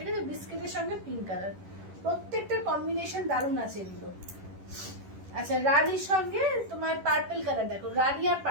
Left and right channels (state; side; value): late; left; 11 ms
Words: আছে, বিস্কিটের সঙ্গে পিঙ্ক কালার, প্রত্যেকটা কম্বিনেশন দারুণ আছে এগুলো। আচ্ছা রানীর সঙ্গে তোমার পার্পল কালার, দেখো রানী আর